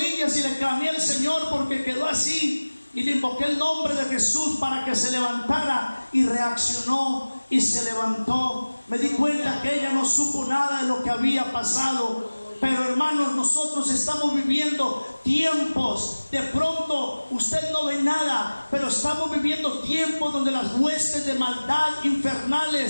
y le clamé al Señor porque quedó así, y le invoqué el nombre de Jesús para que se levantara, y reaccionó y se levantó. Me di cuenta que ella no supo nada de lo que había pasado. Pero hermanos, nosotros estamos viviendo tiempos, de pronto usted no ve nada, pero estamos viviendo tiempos donde las huestes de maldad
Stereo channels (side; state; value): both; inverted; correlation -1.00